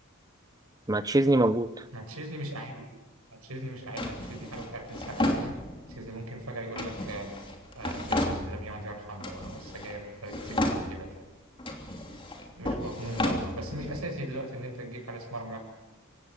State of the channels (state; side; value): normal; both; correlation 0.59